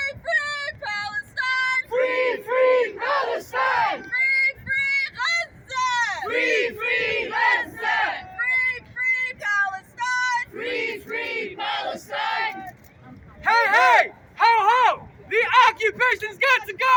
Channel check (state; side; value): identical; both; correlation 1.00